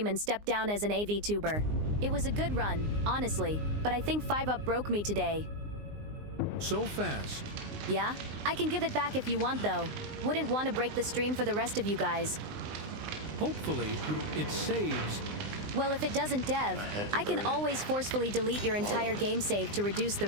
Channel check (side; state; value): left; late; 19 ms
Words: and step down as an VTuber. It was a good run, honestly, but I think 5-up broke me today. So fast. Yeah? I can give it back if you want though. Wouldn't want to break the stream for the rest of you guys. Hopefully, it saves. Well, if it doesn't, Dev, I can always forcefully delete your entire game save to reduce the